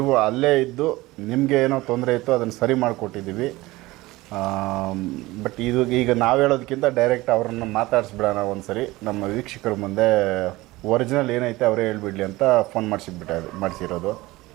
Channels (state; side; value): quieter; left; 19.6 dB